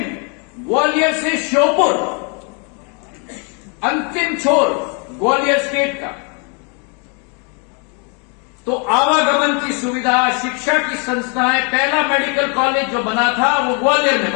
ग्वालियर से श्योपुर, अंतिम छोर ग्वालियर स्टेट का। तो आवागमन की सुविधा, शिक्षा की संस्थाएं, पहला मेडिकल कॉलेज जो बना था वो ग्वालियर में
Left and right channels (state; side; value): quieter; right; 36.2 dB